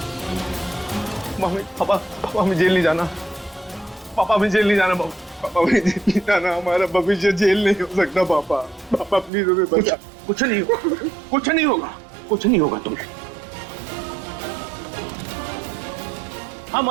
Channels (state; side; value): drops out; left; at 9.3 s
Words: मम्मी, पापा, पापा हमें जेल नहीं जाना। पापा हमें जेल नहीं जाना। पापा हमें जेल नहीं जाना। हमारा भविष्य जेल नहीं हो सकता। पापा, पापा प्लीज हमें बचा। कुछ नहीं होगा, कुछ नहीं होगा, कुछ नहीं होगा तुम्हें। हम